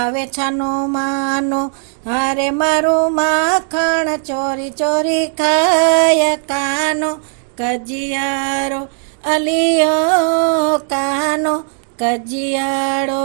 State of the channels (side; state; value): left; silent; 61 dB below the other